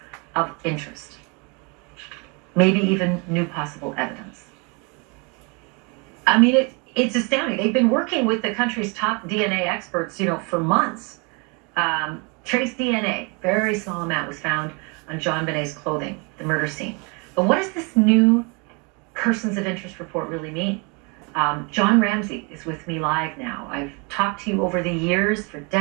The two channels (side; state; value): left; quieter; 31.9 dB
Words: of interest. Maybe even new possible evidence. I mean, it's astounding. They've been working with the country's top DNA experts, for months. Trace DNA, very small amount, was found on JonBenét's clothing, the murder scene. But what does this new persons of interest report really mean? John Ramsey is with me live now. I've talked to you over the years, for